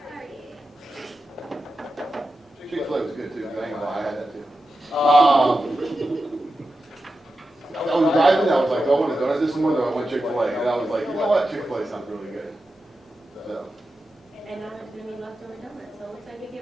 Chick-fil-A was good too. I ain't gonna lie, I had that too. I was driving. I was like, do I want a donut this morning, or do I want Chick-fil-A? And I was like, you know what? Chick-fil-A sounds really good. So. And now there's gonna be leftover donuts, so it looks like you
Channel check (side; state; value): both; normal; correlation 0.91